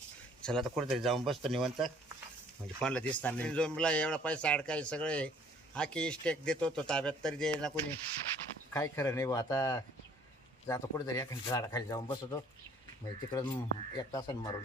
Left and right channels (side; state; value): both; normal; correlation 0.57